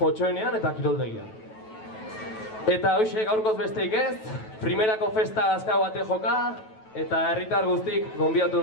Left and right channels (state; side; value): late; right; 9.2 ms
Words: eta Kiroldegian. Eta hoxe, gaurkoz besteik ez, primerako festa azkau bate joka, eta herritar guztik gonbiatu